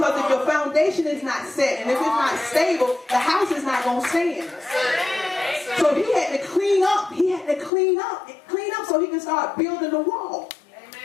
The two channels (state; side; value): drops out; right; at 7.7 s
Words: if your foundation is not set and if it's not stable, the house is not going to stand. So he had to clean up. He had to clean up so he can start building the wall.